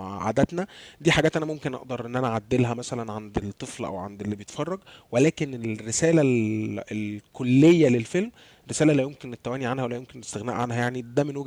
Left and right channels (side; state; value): both; identical; correlation 1.00